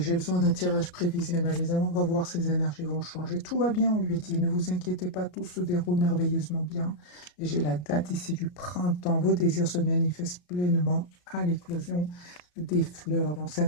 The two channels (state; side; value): late; right; 34 ms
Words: besoin d'un tirage prévisionnel. Les amants, on va voir si ces énergies vont changer. Tout va bien, on lui dit. Ne vous inquiétez pas, tout se déroule merveilleusement bien. Et j'ai la date ici du printemps. Vos désirs se manifestent pleinement à l'éclosion des fleurs. Donc, c'est un